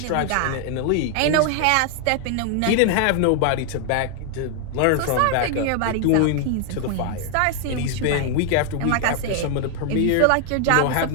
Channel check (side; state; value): both; different; correlation 0.00